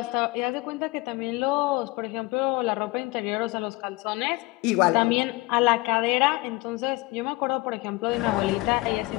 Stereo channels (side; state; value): right; quieter; 22.5 dB